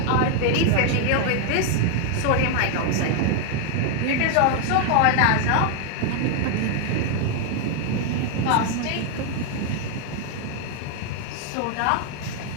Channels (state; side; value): different; both; correlation 0.00